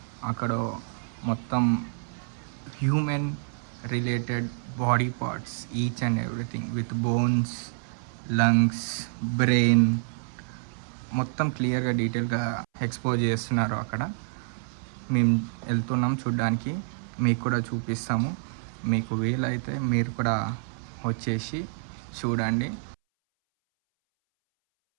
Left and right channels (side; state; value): left; silent; 60 dB below the other